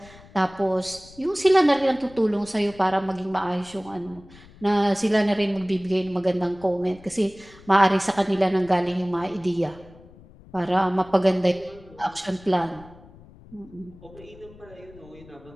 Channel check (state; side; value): noise; left; rumble, 22 dB below the sound